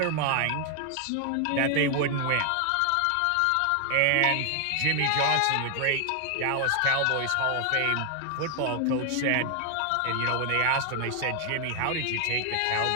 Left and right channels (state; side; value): different; both; correlation 0.00